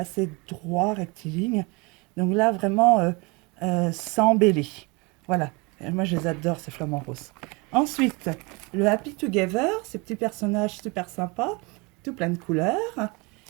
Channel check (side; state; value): left; quieter; 27.6 dB